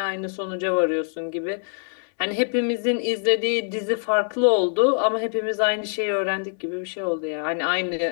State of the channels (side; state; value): right; silent; 62 dB below the other